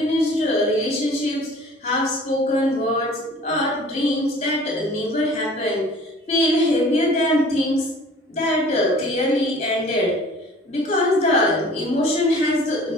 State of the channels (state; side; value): normal; both; correlation 0.48